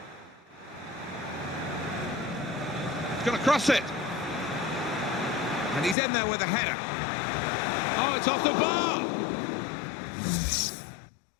He's going to cross it. And he's in there with a header. Oh, it's off the bar.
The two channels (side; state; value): right; drops out; at 6.0 s